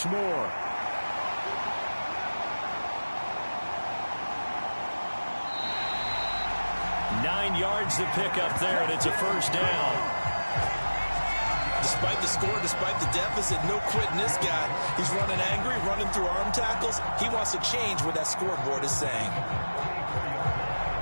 more. Nine yards to pick up there, and it's a 1st down. Despite the score, despite the deficit, no quitting this guy. He's running angry, running through arm tackles. He wants to change what that scoreboard is saying.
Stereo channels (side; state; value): both; inverted; correlation -1.00